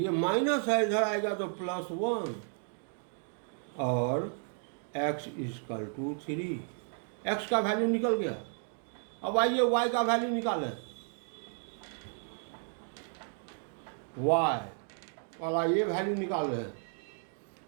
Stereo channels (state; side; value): silent; left; 56 dB below the other